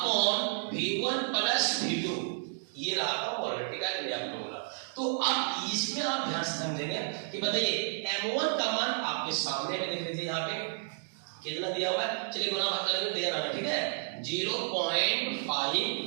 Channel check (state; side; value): silent; left; digital silence